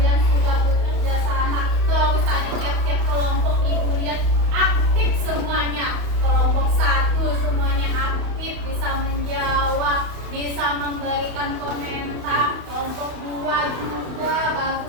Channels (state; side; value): late; left; 31 ms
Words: sudah bekerja sama. Terus tadi tiap-tiap kelompok ibu lihat aktif semuanya. Kelompok 1 semuanya aktif, bisa menjawab, bisa memberikan komentar. Kelompok 2 juga